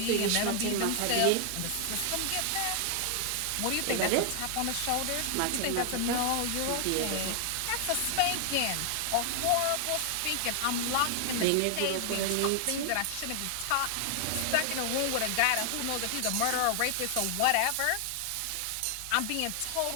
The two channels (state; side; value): different; both; correlation 0.00